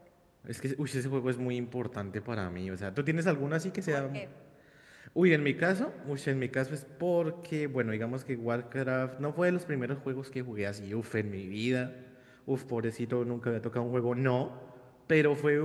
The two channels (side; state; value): both; identical; correlation 1.00